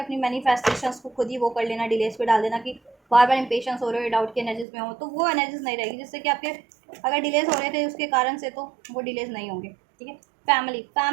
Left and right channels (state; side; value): drops out; left; at 4.7 s